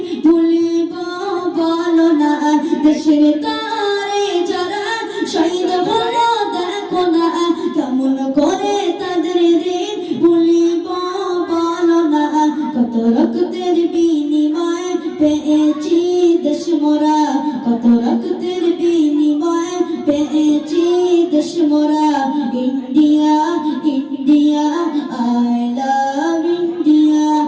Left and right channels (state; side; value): identical; both; correlation 1.00